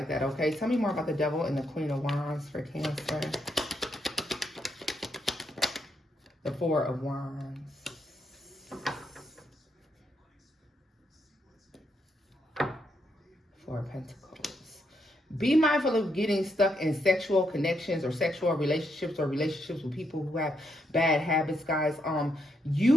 that, okay? Tell me more about the Devil and the Queen of Wands for Cancer. The Four of Wands. Four of Pentacles. Be mindful of getting stuck in sexual connections or sexual relationships or relationships with people who have bad habits, guys. You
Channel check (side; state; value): both; normal; correlation 0.78